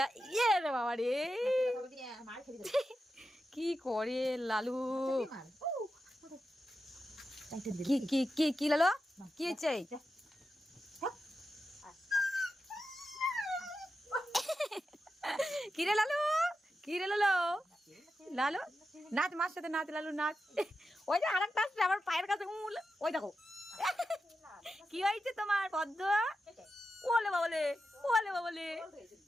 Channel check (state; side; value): normal; both; correlation 0.90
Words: কি রে বাবা রে কি করে লালু কি কি কি কি লালু কি হয়েছে কি রে লালু কি রে লালু লালু নাচ মার সাথে নাচ লালু নাচ ওই যে আরেকটা আসছে আমার পায়ের কাছে ওই দেখো কি হয়েছে তোমার পদ্ম ওলে বাবলে ওলে বাবলে